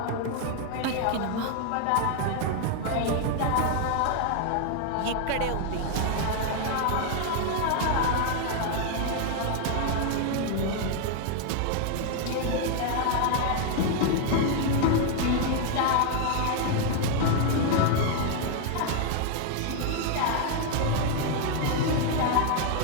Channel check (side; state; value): both; different; correlation 0.00